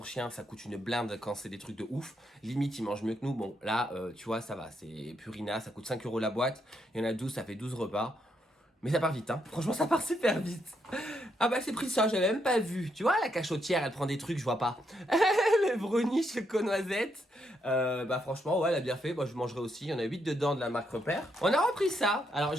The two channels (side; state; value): both; normal; correlation 0.78